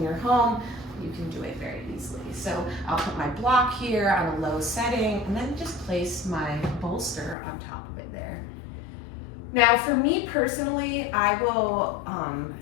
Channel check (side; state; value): right; drops out; at 7.4 s